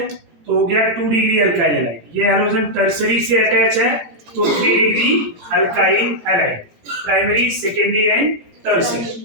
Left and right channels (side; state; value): left; late; 17 ms